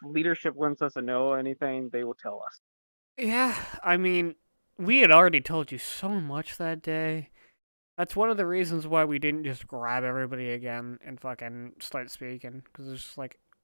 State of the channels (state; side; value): inverted; both; correlation -1.00